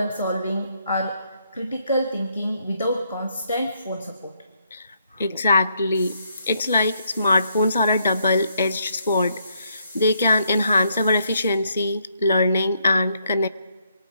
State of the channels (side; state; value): both; inverted; correlation -0.74